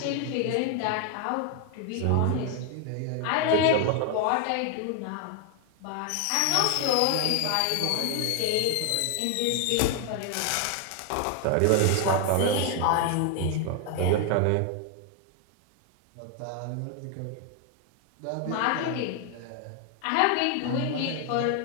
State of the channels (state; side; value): different; both; correlation 0.00